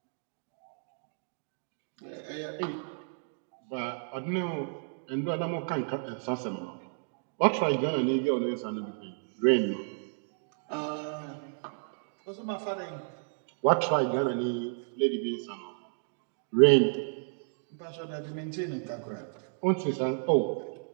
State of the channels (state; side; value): silent; left; digital silence